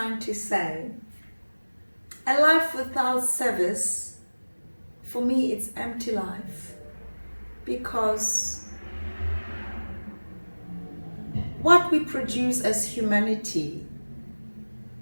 to say? A life without service, for me, it's empty life, because what we produce as humanity,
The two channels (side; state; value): both; inverted; correlation -1.00